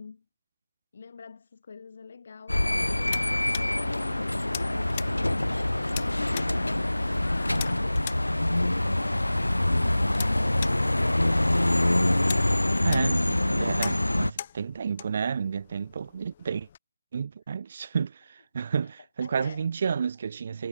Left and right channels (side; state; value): both; inverted; correlation -0.96